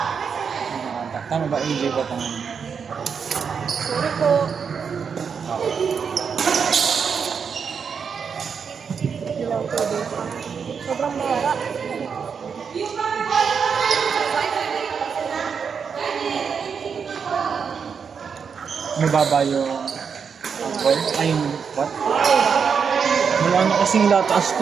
Tama ba? AJ ba ito? Sorry po. Ilang pwede. Sobrang mahara. Mababa yung angkol? Ay, yung what? Wala na kasing lataas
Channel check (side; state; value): left; quieter; 6.4 dB